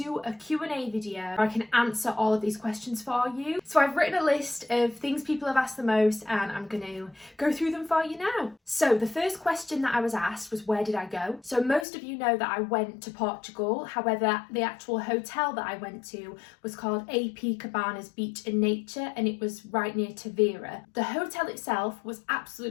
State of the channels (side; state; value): right; drops out; at 11.9 s